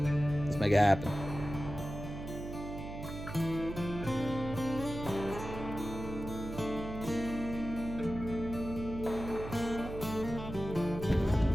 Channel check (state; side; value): noise; right; hum, 9 dB below the sound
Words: Let's make it happen.